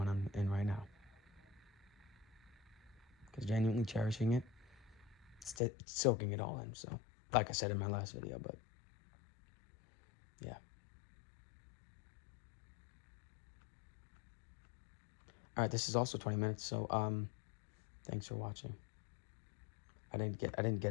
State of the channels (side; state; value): right; drops out; at 5.6 s